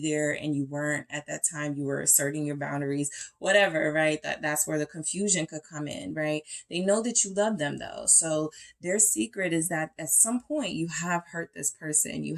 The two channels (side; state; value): both; identical; correlation 1.00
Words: there and you weren't at that time. You were asserting your boundaries, whatever, right? That's where the confusion could come in, right? They know that you love them though. So their secret is that at some point you have hurt this person, you